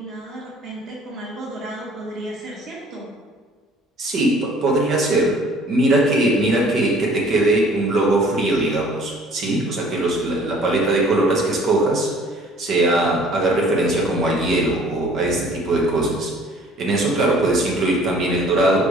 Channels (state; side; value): normal; both; correlation 0.53